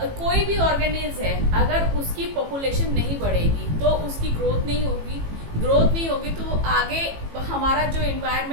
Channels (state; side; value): late; left; 18 ms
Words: भी ऑर्गेनिज है, अगर उसकी पॉपुलेशन नहीं बढ़ेगी तो उसकी ग्रोथ नहीं होगी, ग्रोथ नहीं होगी तो आगे हमारा जो